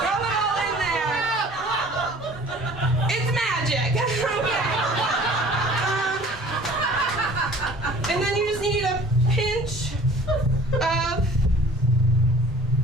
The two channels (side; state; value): both; normal; correlation 0.49